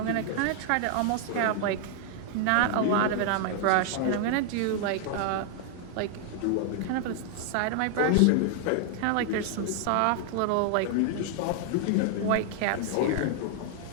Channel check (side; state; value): both; different; correlation 0.00